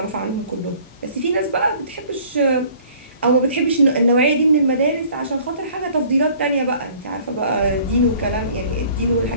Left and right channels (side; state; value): both; inverted; correlation -0.52